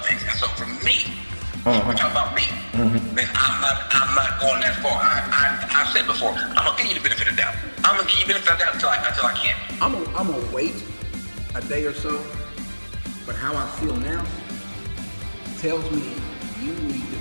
things. And so for me, we're talking about me. Then I'm not going that far. I've said before, I'm gonna give you the benefit of the doubt. I'm gonna give you the benefit of the doubt until I can't. I'm gonna wait a day or so. But how I feel now tells me you need to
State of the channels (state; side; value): inverted; both; correlation -1.00